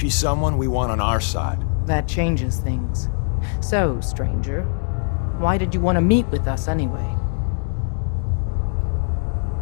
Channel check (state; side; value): silent; right; digital silence